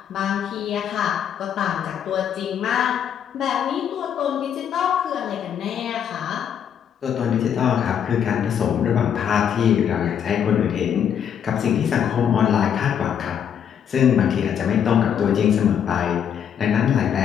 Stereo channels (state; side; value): quieter; right; 8.6 dB